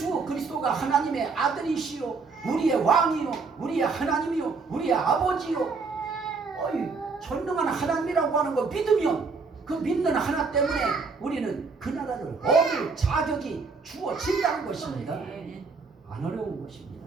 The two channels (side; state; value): left; quieter; 4.6 dB